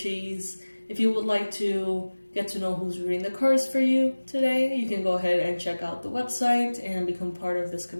If you would like to get to know who's reading the cards for you today, you can go ahead and check out the website and become part of this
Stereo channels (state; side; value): inverted; both; correlation -1.00